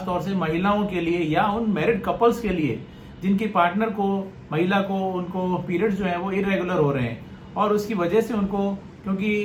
तौर से महिलाओं के लिए या उन मैरिड कपल्स के लिए जिनकी पार्टनर को, महिला को, उनको पीरियड्स जो है वो इरेगुलर हो रहे हैं और उसकी वजह से उनको,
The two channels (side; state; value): both; identical; correlation 1.00